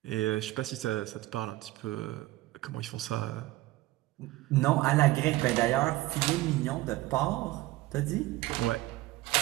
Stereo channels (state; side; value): quieter; left; 18.0 dB